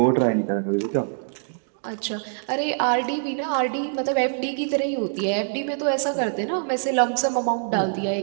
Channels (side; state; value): left; silent; digital silence